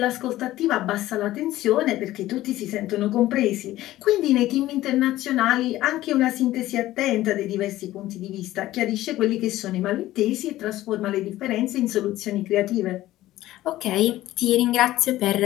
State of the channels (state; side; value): quieter; right; 15.4 dB